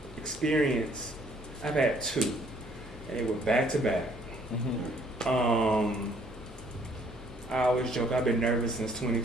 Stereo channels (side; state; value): both; normal; correlation 0.63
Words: had two, and they were back to back. I always joke I've been nervous since